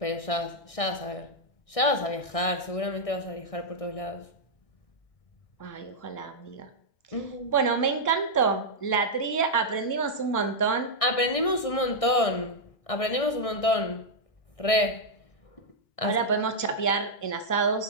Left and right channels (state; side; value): late; right; 1.6 ms